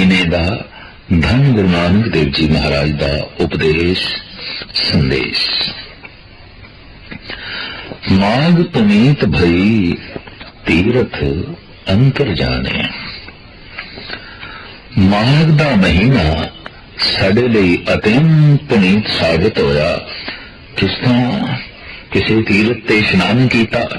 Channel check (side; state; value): both; identical; correlation 1.00